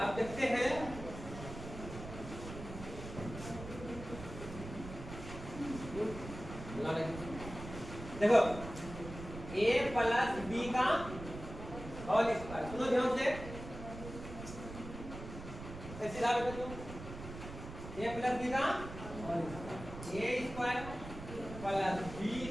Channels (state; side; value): noise; right; rumble, 11 dB below the sound